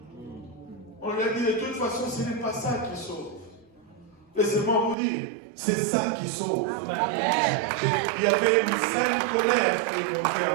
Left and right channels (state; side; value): drops out; left; at 5.0 s